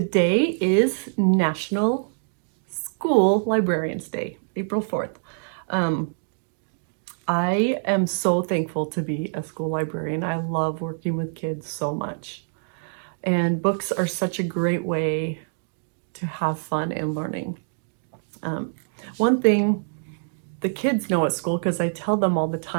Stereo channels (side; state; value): left; silent; digital silence